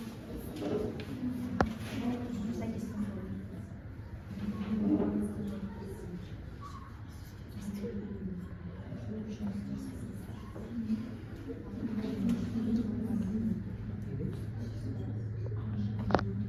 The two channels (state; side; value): identical; both; correlation 1.00